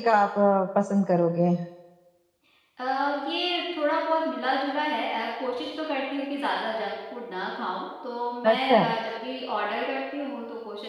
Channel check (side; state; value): both; identical; correlation 1.00